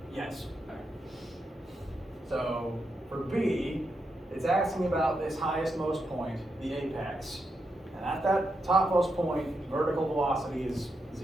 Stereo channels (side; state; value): both; normal; correlation 0.84